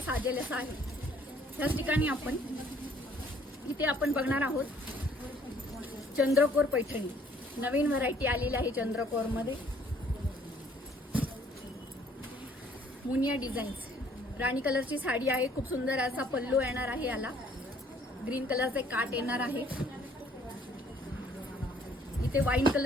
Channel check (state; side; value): normal; both; correlation 0.61